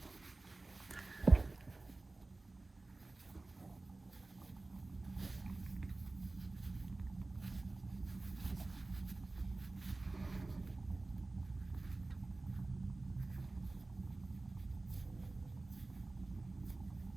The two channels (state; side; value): quieter; left; 3.2 dB